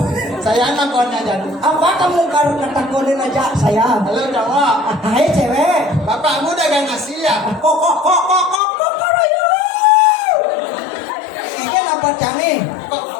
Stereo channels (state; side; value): drops out; right; at 8.6 s